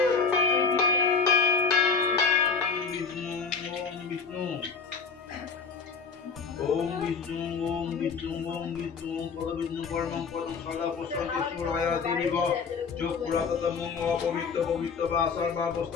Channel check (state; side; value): quieter; right; 5.4 dB